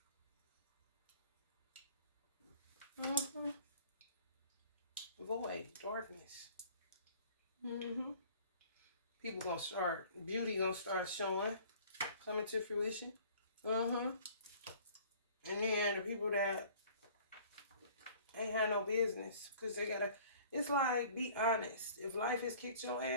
Void, darkness. People gonna start, beauty gonna start showing, coming to fruition. And then the people that ain't had no business, because they gotta, it's like, be honest. If life has kicked your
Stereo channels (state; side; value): inverted; both; correlation -0.50